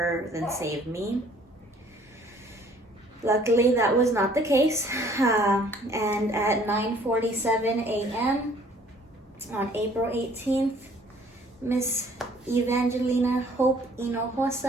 than save me. Luckily, that was not the case. And at 9:47 a.m. on April 18th, Miss Evangelina Hope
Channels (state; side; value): normal; both; correlation 0.57